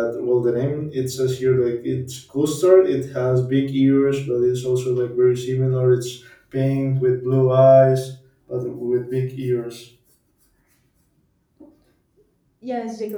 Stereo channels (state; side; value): identical; both; correlation 1.00